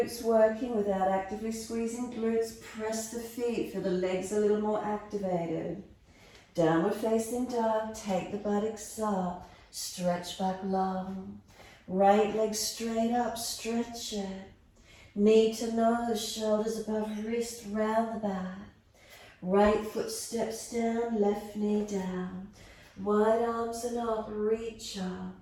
working without actively squeezing glutes, press the feet, feel the legs a little more activated. Downward facing dog, take the buttocks up, stretch back long. Right leg straight up, stretch it. Knee to nose, shoulders above wrist, round the back. Right foot steps down, left knee down. Wide arms and up, reach up.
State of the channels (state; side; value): identical; both; correlation 1.00